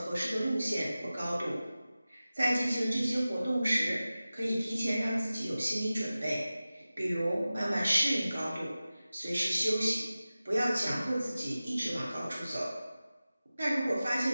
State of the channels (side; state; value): both; inverted; correlation -0.96